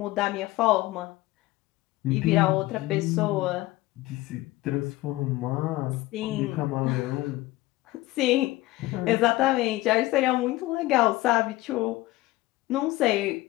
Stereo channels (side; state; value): right; quieter; 18.4 dB